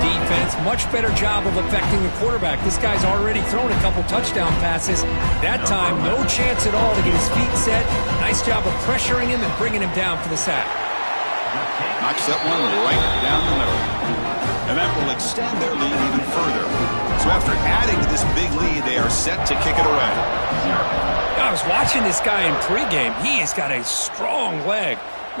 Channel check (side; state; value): both; inverted; correlation -1.00